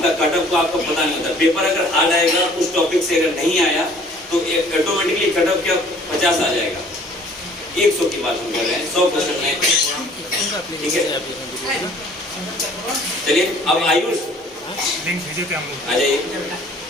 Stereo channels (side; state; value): both; normal; correlation 0.54